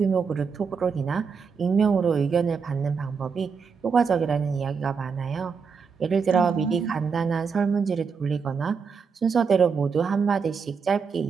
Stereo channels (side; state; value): left; quieter; 5.7 dB